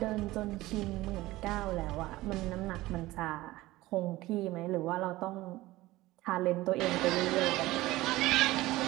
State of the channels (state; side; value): quieter; left; 18.1 dB